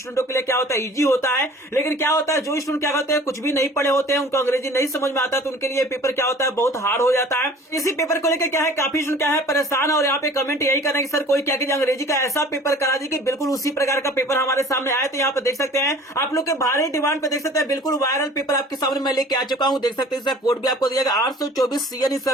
के लिए क्या होता है इजी होता है, लेकिन क्या होता है जो स्टूडेंट क्या होते हैं कुछ भी नहीं पढ़े होते हैं, उनको अंग्रेजी नहीं समझ में आता, तो उनके लिए पेपर क्या होता है बहुत हार्ड हो जाता है। इसी पेपर को लेकर क्या है काफी क्या है परेशान, और यहाँ पे कमेंट यही कर रहे हैं कि सर कोई क्या कीजिए अंग्रेजी का ऐसा पेपर करा दी कि बिल्कुल उसी प्रकार का पेपर हमारे सामने आए। तो यहाँ पे देख सकते हैं आप लोग के भारी डिमांड पे देख सकते हैं बिल्कुल वायरल पेपर आपके सामने मैं लेके आ चुका हूँ। देख सकते हैं इसका कोड भी आपको दिया गया 824 CN इसका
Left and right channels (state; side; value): normal; both; correlation 0.47